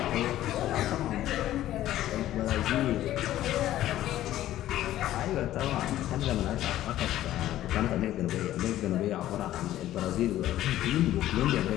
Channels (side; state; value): right; quieter; 13.6 dB